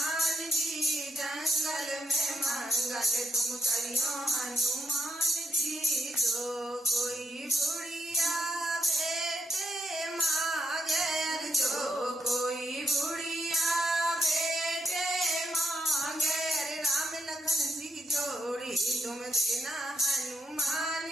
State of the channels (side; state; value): both; normal; correlation 0.81